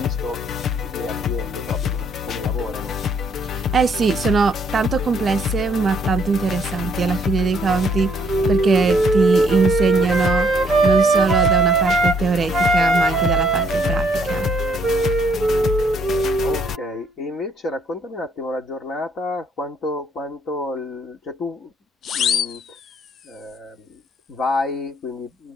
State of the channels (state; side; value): normal; both; correlation 0.68